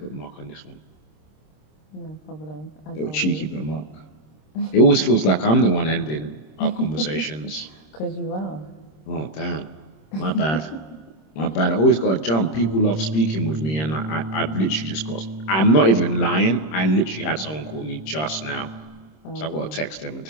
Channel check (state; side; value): late; right; 26 ms